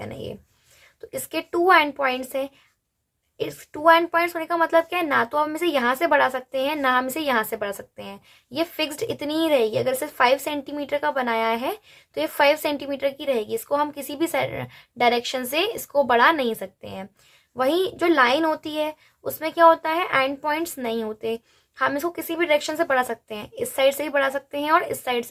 ये, तो इसके 2 एंड पॉइंट्स हैं। इस 2 एंड पॉइंट्स होने का मतलब क्या है? ना तो हम इसे यहाँ से बढ़ा सकते हैं ना हम इसे यहाँ से बढ़ा सकते हैं। ये फिक्स्ड इतनी ही रहेगी। अगर इसे 5 सेंटीमीटर का बनाया है तो ये 5 सेंटीमीटर की रहेगी। इसको हम किसी भी डायरेक्शन से इसको बढ़ा नहीं सकते हैं। वहीं जो लाइन होती है उसमें क्या होता है? एंड पॉइंट्स नहीं होते। हम इसको किसी भी डायरेक्शन से बढ़ा सकते हैं। इस साइड से भी बढ़ा सकते हैं और इस साइड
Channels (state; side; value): identical; both; correlation 1.00